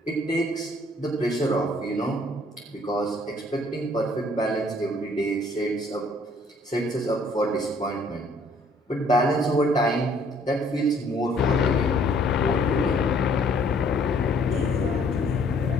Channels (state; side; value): normal; both; correlation 0.61